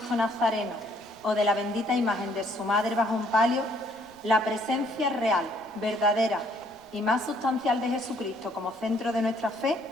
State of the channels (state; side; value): noise; right; rumble, 30 dB below the sound